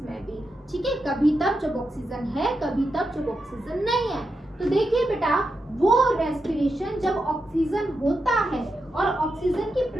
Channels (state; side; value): normal; both; correlation 0.86